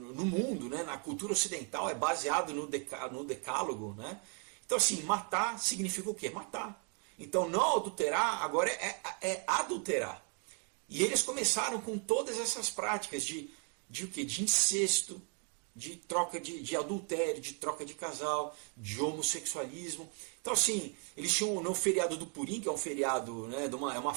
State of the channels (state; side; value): quieter; left; 39.8 dB